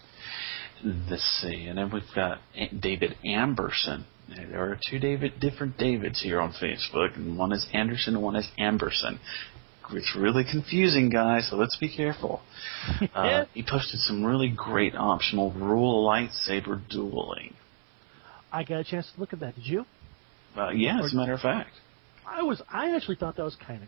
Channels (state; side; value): silent; left; 58 dB below the other